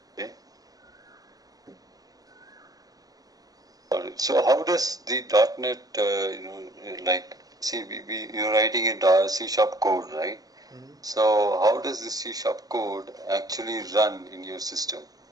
Okay. So how does the .NET like see you're writing a C# code, right? So how does the C# code actually run in your system?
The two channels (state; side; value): late; left; 0.18 ms